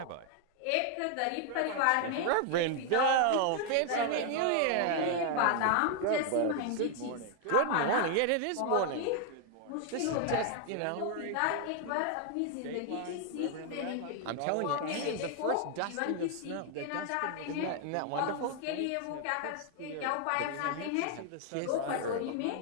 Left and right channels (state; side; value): different; both; correlation 0.00